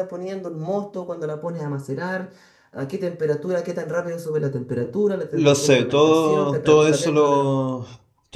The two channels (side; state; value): both; identical; correlation 1.00